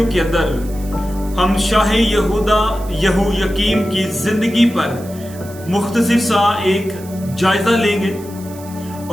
के अंदर हम शाह यहूदा यहोयाकीम की जिंदगी पर मुख्तसर सा एक जायजा लेंगे।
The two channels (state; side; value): noise; right; hiss, 20 dB below the sound